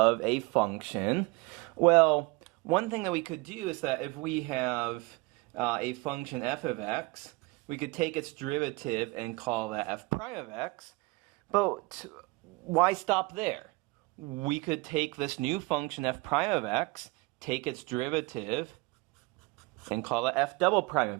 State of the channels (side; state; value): left; quieter; 24.9 dB